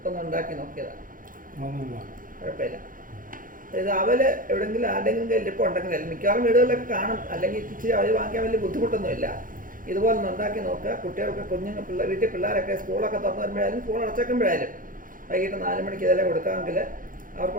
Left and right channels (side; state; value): left; late; 0.40 ms